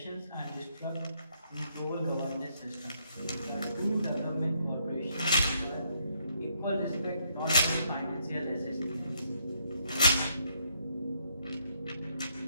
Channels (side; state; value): both; inverted; correlation -0.71